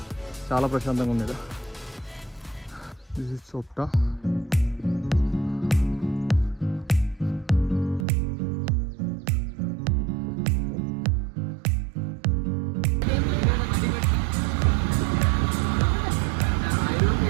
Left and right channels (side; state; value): left; drops out; at 8.1 s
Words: చాలా ప్రశాంతంగా ఉంది ఇక్కడ. This is Chopta.